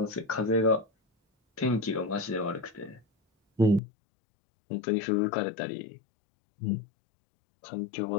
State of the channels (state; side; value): drops out; right; at 3.8 s